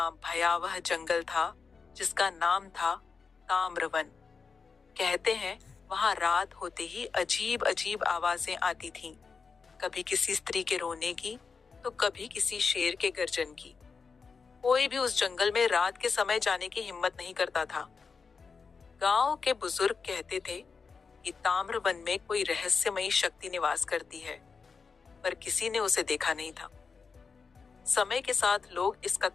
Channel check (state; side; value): quieter; right; 5.2 dB